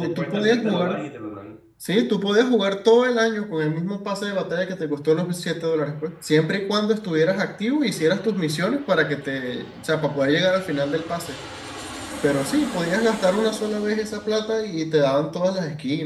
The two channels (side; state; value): both; identical; correlation 1.00